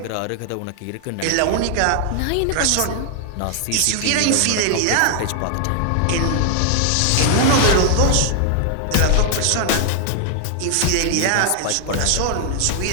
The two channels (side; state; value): both; different; correlation 0.00